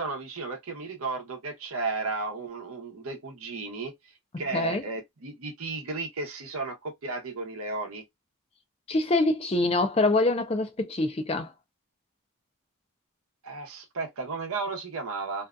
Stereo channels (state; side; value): normal; both; correlation 0.25